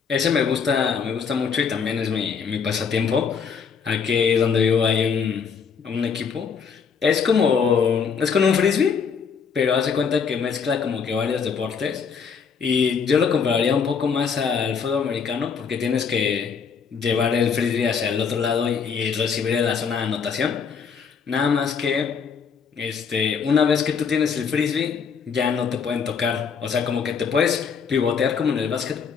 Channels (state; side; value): quieter; right; 6.3 dB